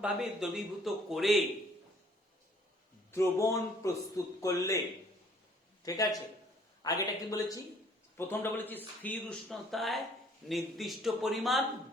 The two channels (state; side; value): normal; both; correlation 0.59